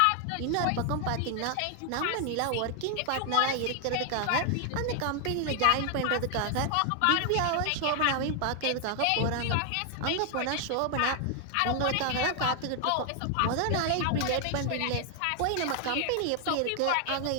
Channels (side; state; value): both; different; correlation 0.00